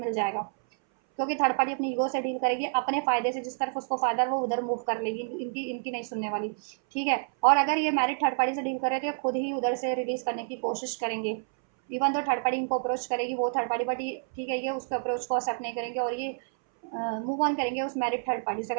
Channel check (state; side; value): silent; left; 59 dB below the other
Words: जाएगा, क्योंकि थर्ड पार्टी अपनी ईगो से डील करेगी, अपने फ़ायदे से, जिस तरफ उसको फ़ायदा वो उधर मूव कर लेगी, इनकी इनकी नहीं सुनने वाली, ठीक है। और अगर ये मैरिड थर्ड पार्टी से डील करे तो ये खुद ही उधर से रिलीज़ करने की कोशिश करेंगे, इवन तो थर्ड पार्टी इनको अप्रोच करेगी, वो थर्ड पार्टी, बट ये ठीक है, ये उसके अप्रोच को एक्सेप्ट नहीं करेंगे और ये मूव ऑन करेंगे उस मैरिड थर्ड पार्टी से,